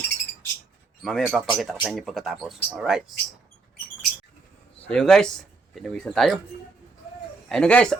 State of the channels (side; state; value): left; quieter; 4.0 dB